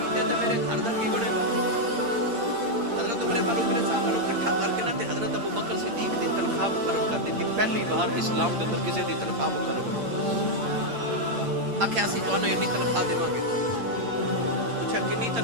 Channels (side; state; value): left; late; 8.7 ms